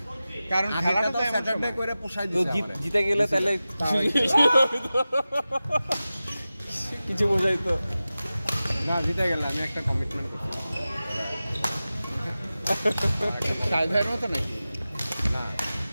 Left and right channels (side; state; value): both; inverted; correlation -0.95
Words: কারণ খেলাটা তো এমন স্যাটারডে সময়। করে পোষাই তো দিছে জিতে গেলে তাহলে কিছু বোঝাই তো। না জিতে গেলে আমি একটা কমিটমেন্ট করছি সাইডের মতো নাকি? না,